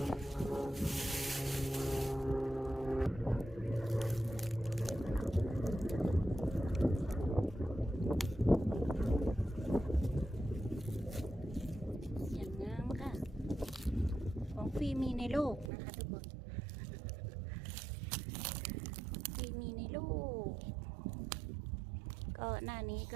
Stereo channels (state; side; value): drops out; left; at 15.7 s